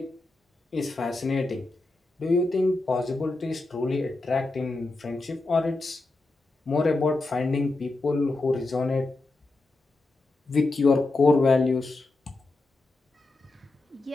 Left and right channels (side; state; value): right; quieter; 3.1 dB